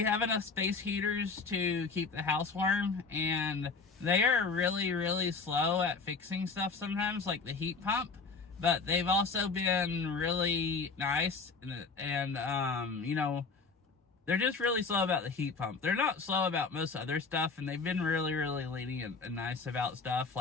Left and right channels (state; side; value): quieter; right; 4.5 dB